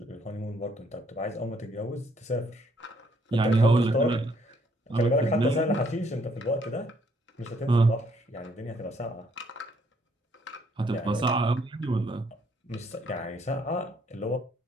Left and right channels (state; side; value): normal; both; correlation 0.68